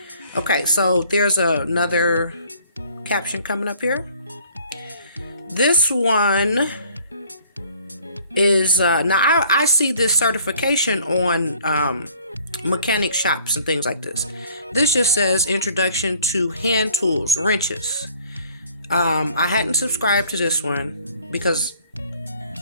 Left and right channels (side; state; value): both; inverted; correlation -0.56